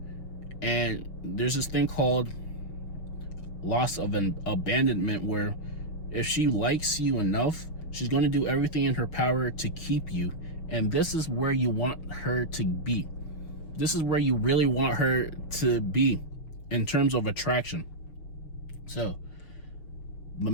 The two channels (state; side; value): late; right; 6.4 ms